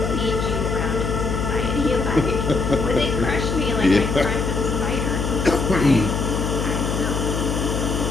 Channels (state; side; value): noise; left; hum, 1 dB below the sound